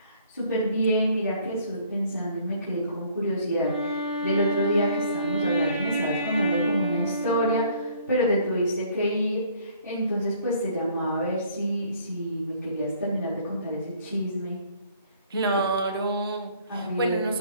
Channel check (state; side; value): inverted; both; correlation -0.59